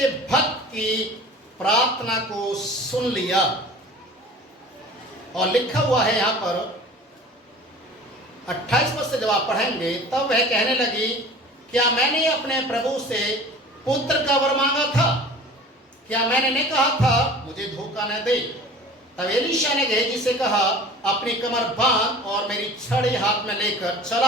भक्त की प्रार्थना को सुन लिया। और लिखा हुआ है यहां पर 28 पद से जब आप पढ़ेंगे, तब वह कहने लगी, क्या मैंने अपने प्रभु से पुत्र का वर मांगा था? क्या मैंने नहीं कहा था मुझे धोखा न दे? तब एलीशा ने गेहजी से कहा, अपनी कमर बांध और मेरी छड़ी हाथ में लेकर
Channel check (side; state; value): both; normal; correlation 0.42